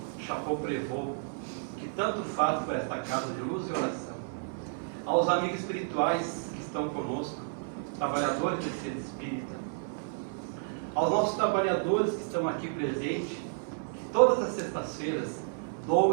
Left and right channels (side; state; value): left; silent; digital silence